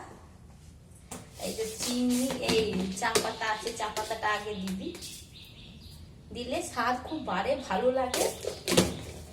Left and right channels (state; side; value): identical; both; correlation 1.00